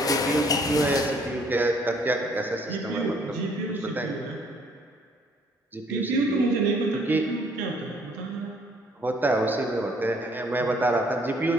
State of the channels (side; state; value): both; normal; correlation 0.62